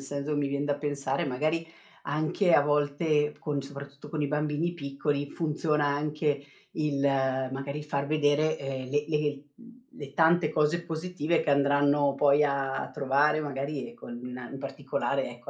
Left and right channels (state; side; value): identical; both; correlation 1.00